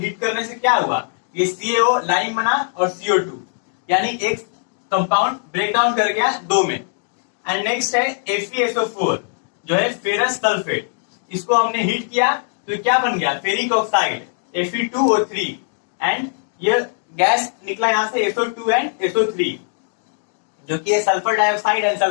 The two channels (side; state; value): right; silent; digital silence